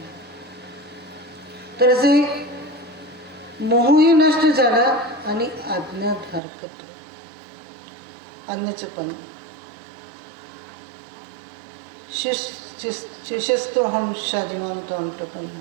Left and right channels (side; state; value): left; drops out; at 6.4 s